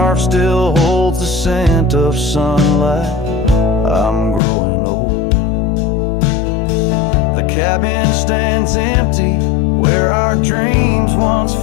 still holds the scent of sunlight. I'm growing old. The cabin stands empty, where our dreams once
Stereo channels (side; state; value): right; drops out; at 4.4 s